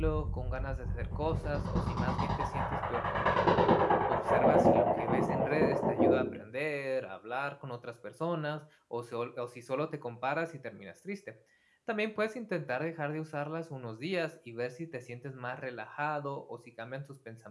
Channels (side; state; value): both; identical; correlation 1.00